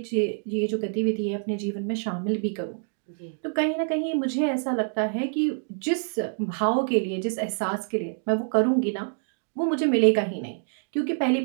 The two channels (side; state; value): left; silent; digital silence